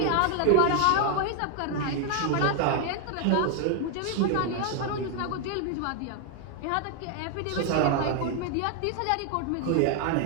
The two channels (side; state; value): both; different; correlation 0.00